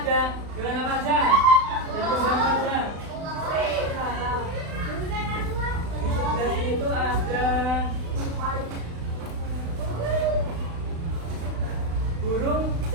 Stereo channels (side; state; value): left; late; 36 ms